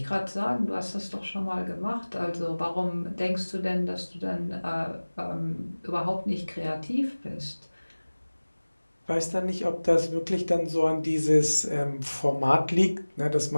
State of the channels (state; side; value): inverted; both; correlation -1.00